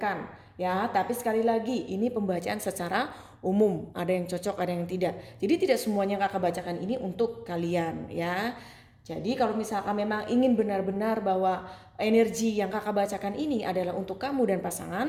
ya. Tapi sekali lagi ini pembacaan secara umum, ada yang cocok, ada yang tidak. Jadi tidak semuanya kakak bacakan ini untuk kalian ya. Jadi kalau misalkan memang ingin benar-benar bahwa energi yang kakak bacakan ini adalah untuk kamu dan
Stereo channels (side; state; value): both; identical; correlation 1.00